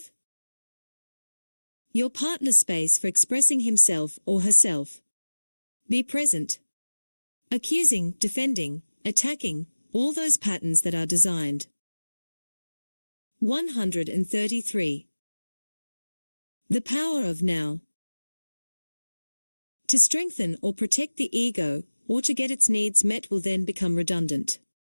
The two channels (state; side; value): inverted; both; correlation -1.00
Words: your partner space for expressing himself or herself. Be present. Accusing, defending, attacking, all those patterns that are designed. 133. The power of now. To strengthen or protect the ego, or to get its needs met will then become redundant.